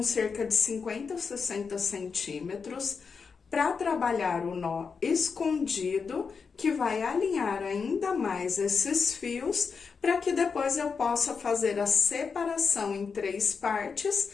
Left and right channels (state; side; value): quieter; right; 5.5 dB